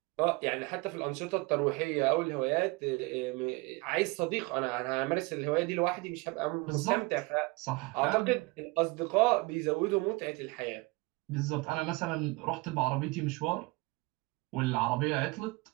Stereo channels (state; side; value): quieter; left; 25.2 dB